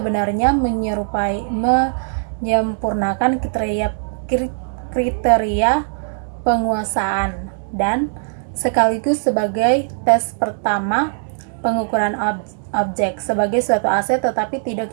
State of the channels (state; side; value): silent; left; digital silence